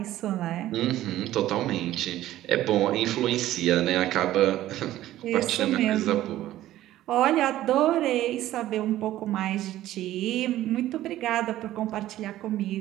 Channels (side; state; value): left; quieter; 14.2 dB